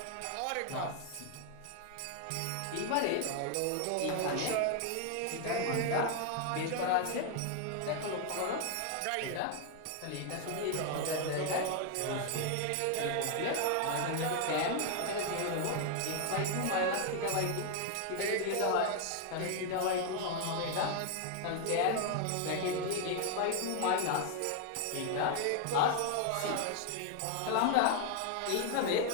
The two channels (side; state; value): both; different; correlation 0.00